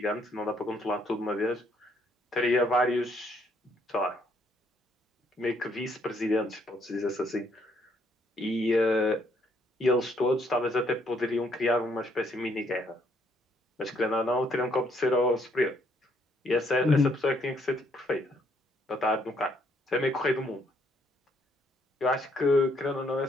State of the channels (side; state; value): both; normal; correlation 0.69